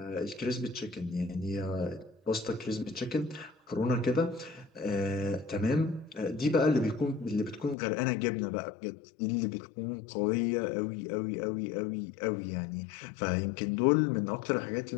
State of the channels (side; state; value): right; drops out; at 7.8 s